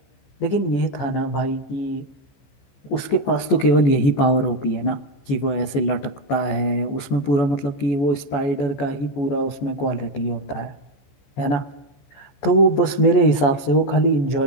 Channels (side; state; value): right; late; 14 ms